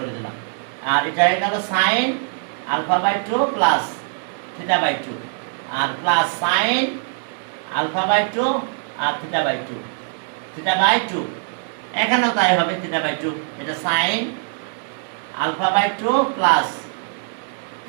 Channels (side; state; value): left; silent; 57 dB below the other